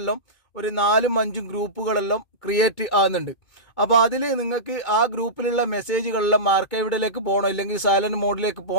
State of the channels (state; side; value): late; right; 2.2 ms